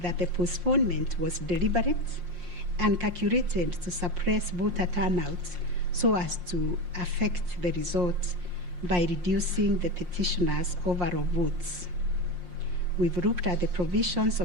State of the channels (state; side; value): late; left; 5.6 ms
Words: the postponement was deliberate and calculated to suppress voter turnout so as to affect the result by reducing the petitioners' overall votes. We've looked at the provisions